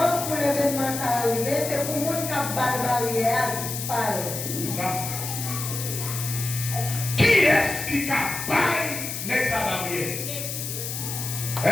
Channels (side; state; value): left; noise; hiss, 5 dB below the sound